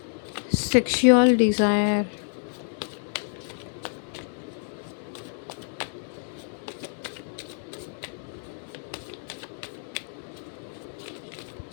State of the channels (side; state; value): right; silent; 59 dB below the other